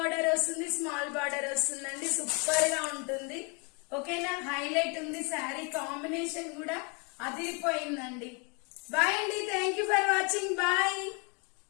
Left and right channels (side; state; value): right; quieter; 32.7 dB